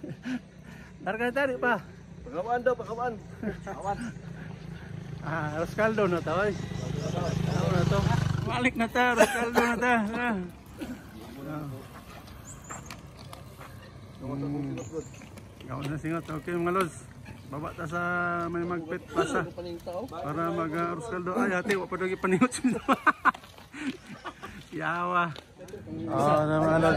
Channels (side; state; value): both; identical; correlation 1.00